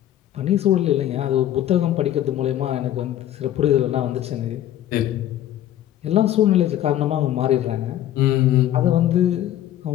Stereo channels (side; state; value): right; quieter; 12.4 dB